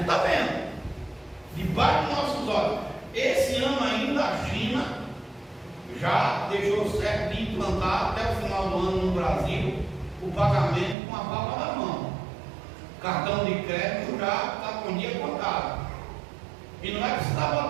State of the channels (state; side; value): drops out; left; at 11.0 s